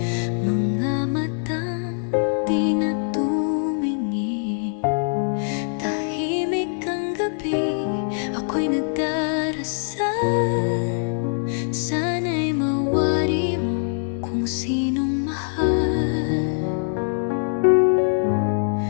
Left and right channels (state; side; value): silent; right; digital silence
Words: mga matang di na tumingin. Tahimik ang gabi, ako'y nagdarasal. Sana'y mawari mo kung sinong mahal.